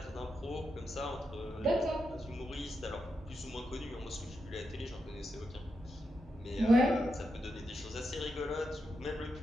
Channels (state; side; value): normal; both; correlation 0.85